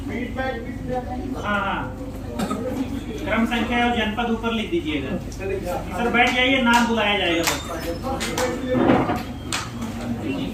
हाँ हाँ, क्रम संख्या और जनपद ऊपर लिख दीजिएगा। सर बैठ जाइए, नाम बुलाया जाएगा बस।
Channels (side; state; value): both; identical; correlation 1.00